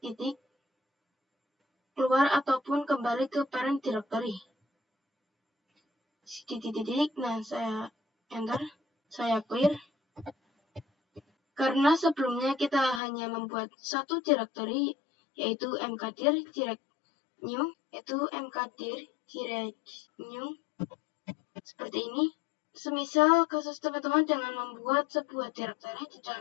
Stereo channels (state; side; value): drops out; right; at 13.0 s